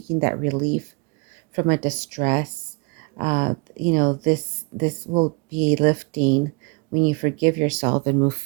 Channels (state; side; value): quieter; left; 31.0 dB